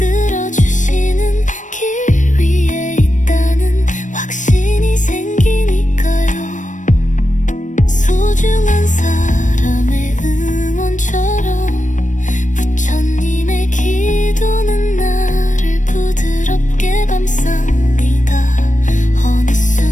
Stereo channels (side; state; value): right; late; 0.37 ms